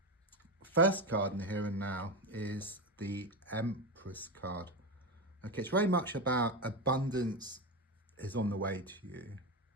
first card in the here and now is the Empress card. Okay, it's very much about abundance is on the way to you.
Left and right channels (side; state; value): both; normal; correlation 0.16